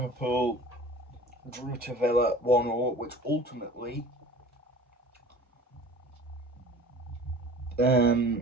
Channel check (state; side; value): normal; both; correlation 0.44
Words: drew to Villa 1-1, which ultimately